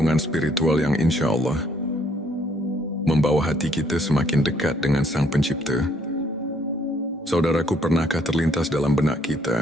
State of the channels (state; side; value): normal; both; correlation 0.66